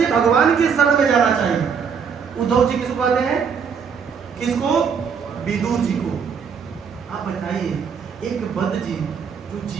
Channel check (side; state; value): left; quieter; 6.5 dB